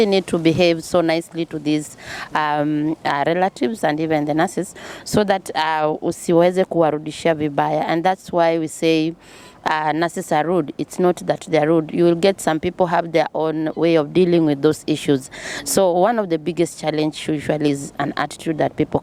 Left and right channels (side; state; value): both; identical; correlation 1.00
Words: need to behave so nicely to these relatives and even the nurses, so that usiweze kuwarudishia vibaya. And that's why we say nurses are rude. It's not that they're rude. You will get some people have their own way of dealing with those issues. So one of the biggest challenge usually is an attitude that people